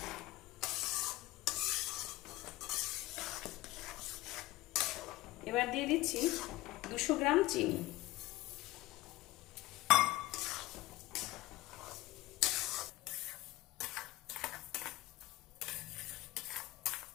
এবার দিয়ে দিচ্ছি 200 গ্রাম চিনি।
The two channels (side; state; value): right; quieter; 18.2 dB